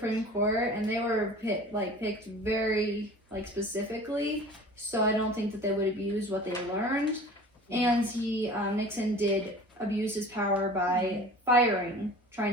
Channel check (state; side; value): normal; both; correlation 0.42